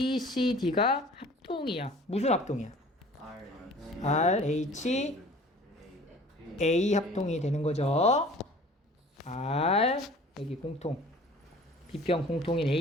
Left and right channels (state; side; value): normal; both; correlation 0.47